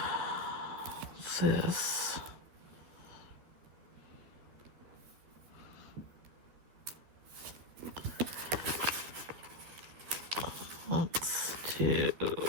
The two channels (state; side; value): late; left; 13 ms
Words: this. Let's do